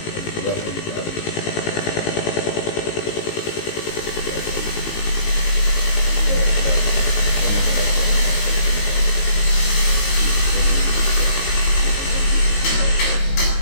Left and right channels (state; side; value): late; right; 19 ms